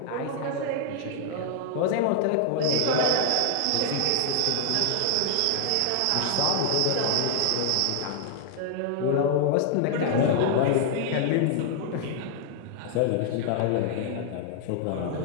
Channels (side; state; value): both; different; correlation -0.01